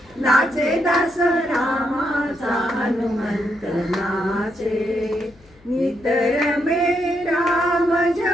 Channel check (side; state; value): left; noise; hum, 28 dB below the sound